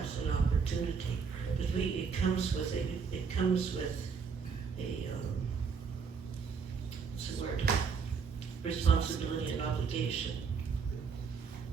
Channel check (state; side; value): quieter; left; 5.8 dB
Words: an opportunity. But it comes with a what's the word? Responsibility and obligation.